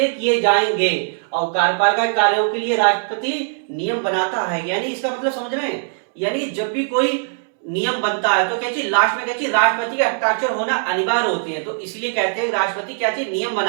किए जाएंगे, और कार्यपालिका कार्यों के लिए राष्ट्रपति नियम बनाता है। यानी इसका मतलब समझ रहे हैं, यानी जब भी कोई नियम बनता है तो क्या चीज लास्ट में क्या चीज राष्ट्रपति के हस्ताक्षर होना अनिवार्य होते हैं, तो इसलिए कहते हैं राष्ट्रपति क्या चीज नियम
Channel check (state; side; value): silent; left; 66 dB below the other